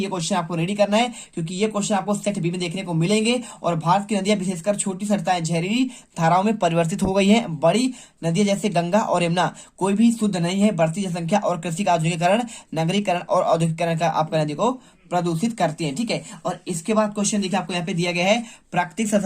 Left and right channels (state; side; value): identical; both; correlation 1.00